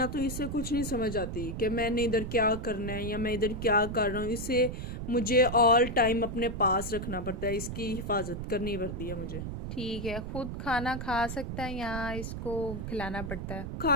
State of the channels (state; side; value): noise; right; rumble, 6 dB below the sound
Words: तो इसे कुछ नहीं समझ आती कि मैंने इधर क्या करना है या मैं इधर क्या कर रहा हूँ। इसे मुझे ऑल टाइम अपने पास रखना पड़ता है, इसकी हिफाजत करनी पड़ती है मुझे। ठीक है। खुद खाना खा सकता है या इसको खिलाना पड़ता है?